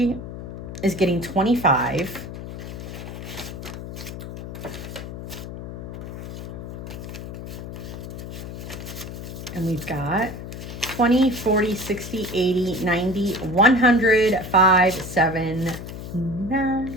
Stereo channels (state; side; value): noise; left; hum, 9 dB below the sound